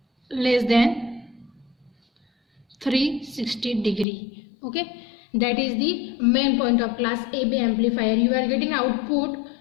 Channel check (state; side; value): drops out; right; at 4.0 s